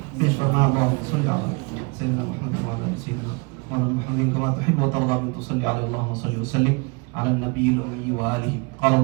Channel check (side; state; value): left; quieter; 30.7 dB